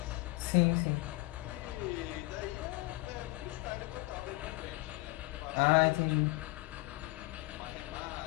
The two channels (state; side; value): quieter; right; 22.2 dB